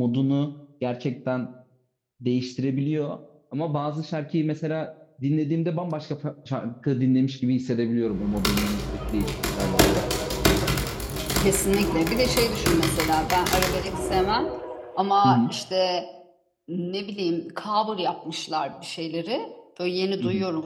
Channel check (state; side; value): identical; both; correlation 1.00